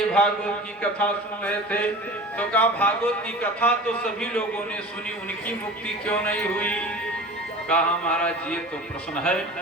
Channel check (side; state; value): both; normal; correlation 0.37